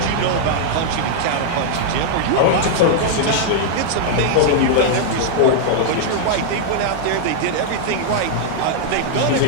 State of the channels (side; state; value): both; different; correlation -0.01